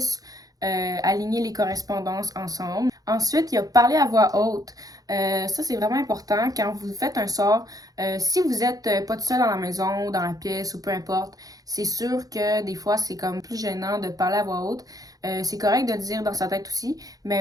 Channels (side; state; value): left; late; 0.18 ms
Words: aligner les correspondances ensemble. Ensuite, il y a parler à voix haute. Ça, c'est vraiment important quand vous faites un sort. Si vous êtes pas tout seul dans la maison, dans la pièce ou peu importe, c'est sûr que des fois, c'est comme plus gênant de parler à voix haute. C'est correct de le dire dans sa tête aussi,